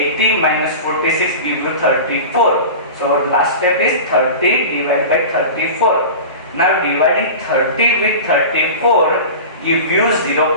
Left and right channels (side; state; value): both; inverted; correlation -0.32